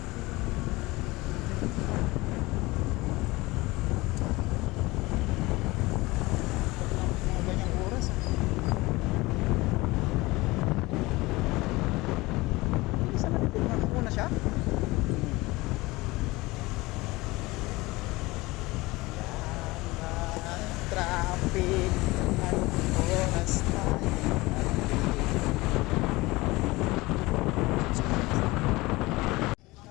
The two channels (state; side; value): quieter; right; 21.3 dB